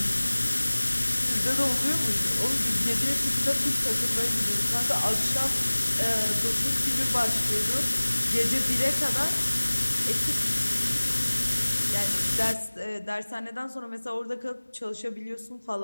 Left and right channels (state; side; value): inverted; both; correlation -1.00